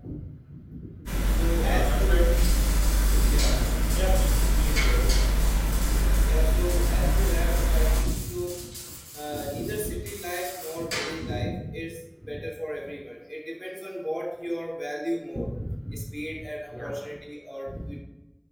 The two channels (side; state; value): both; identical; correlation 1.00